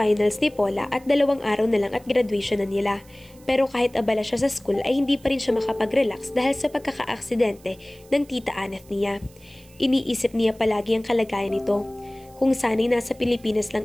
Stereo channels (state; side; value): noise; right; hiss, 27 dB below the sound